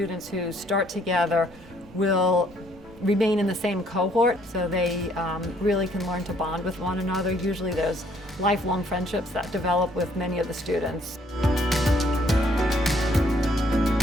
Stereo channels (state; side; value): normal; both; correlation 0.65